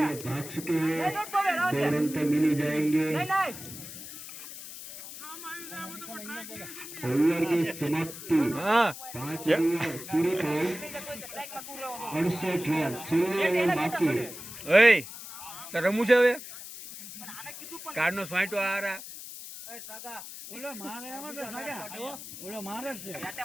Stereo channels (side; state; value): left; noise; hiss, 12 dB below the sound